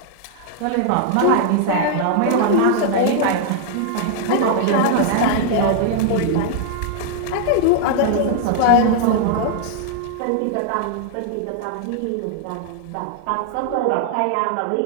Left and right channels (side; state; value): both; different; correlation -0.01